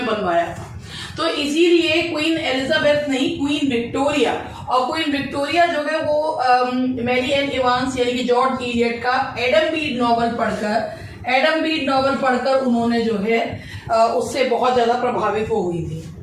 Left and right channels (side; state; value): both; identical; correlation 1.00